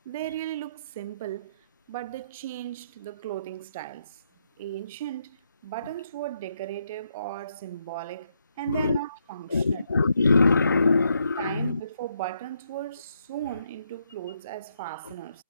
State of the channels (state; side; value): inverted; both; correlation -0.76